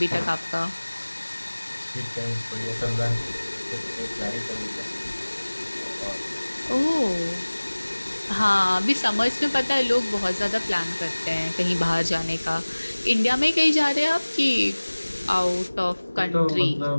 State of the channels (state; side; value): inverted; both; correlation -1.00